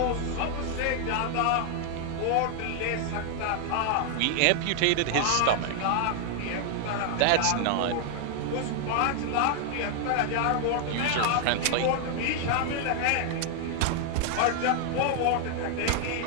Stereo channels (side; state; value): both; different; correlation 0.00